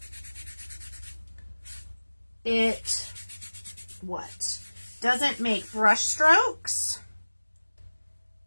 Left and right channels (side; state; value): both; inverted; correlation -1.00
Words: It doesn't make brush strokes.